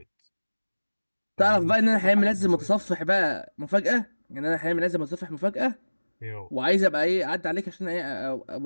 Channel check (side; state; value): both; inverted; correlation -1.00